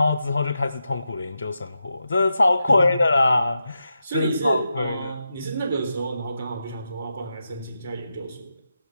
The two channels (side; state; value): both; inverted; correlation -0.87